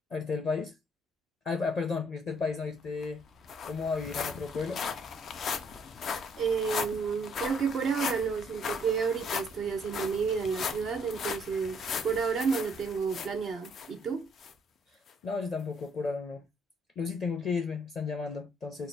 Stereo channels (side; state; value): both; normal; correlation 0.66